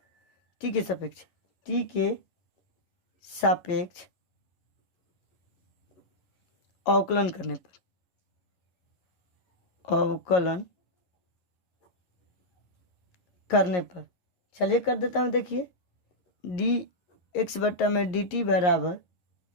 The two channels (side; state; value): right; late; 11 ms